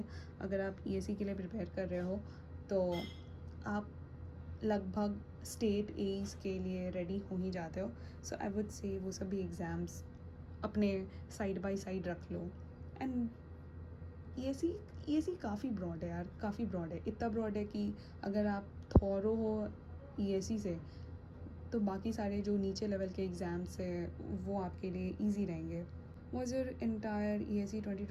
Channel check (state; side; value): identical; both; correlation 1.00